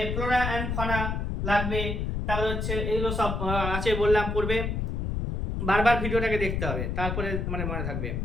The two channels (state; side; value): noise; left; rumble, 2 dB below the sound